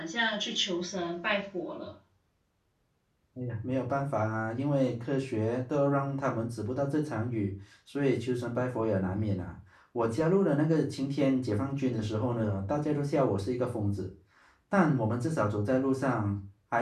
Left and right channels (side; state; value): both; identical; correlation 1.00